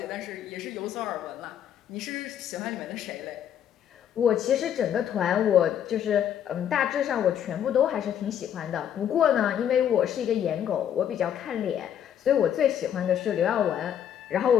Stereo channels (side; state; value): right; quieter; 9.5 dB